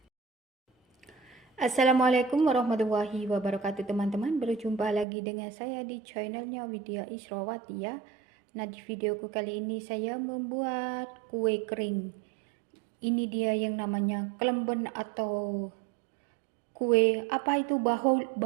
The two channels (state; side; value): drops out; left; at 5.1 s